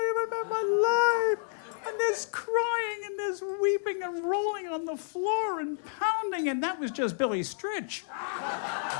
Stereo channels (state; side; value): silent; right; 58 dB below the other